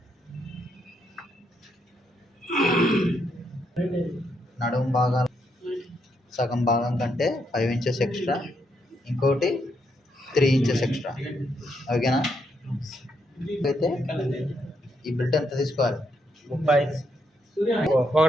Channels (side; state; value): both; normal; correlation 0.78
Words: నడుము భాగాలు సగం భాగం కంటే 5 ఇంచెస్ ఎక్స్ట్రా, ఇంకోటి 3 ఇంచెస్ ఎక్స్ట్రా. ఓకేనా? అయితే ఈ బెల్ట్ ఎంత తీసుకోవాలి? 30.